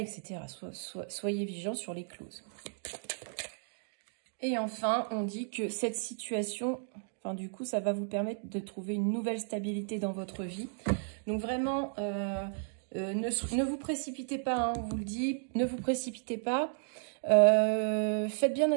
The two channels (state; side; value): silent; left; digital silence